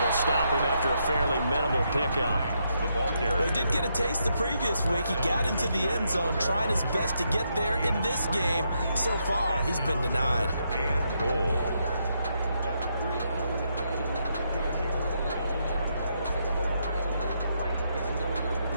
will stop him after a fairly minimal pickup. the ball carrier. Well, he did get a taste the previous week. He got into the end zone, trying his best to get there in this game. So far, he's been denied. And goal.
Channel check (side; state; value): both; inverted; correlation -0.79